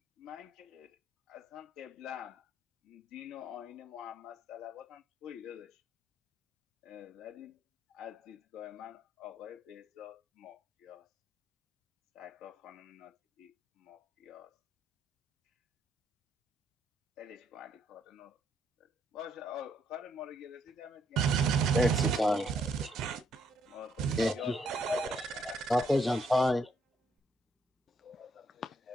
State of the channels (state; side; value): normal; both; correlation 0.72